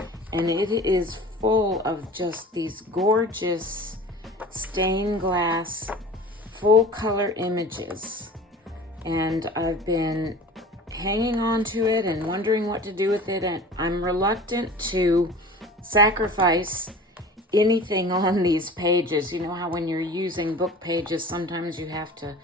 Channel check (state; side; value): normal; both; correlation 0.41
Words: and it is full of just these gorgeous stained glass full color images. And I've been hanging on to it and wondering what to do with it, and I'm reluctant to sacrifice anything on these pages. You know how when you're using book pages, sometimes you have to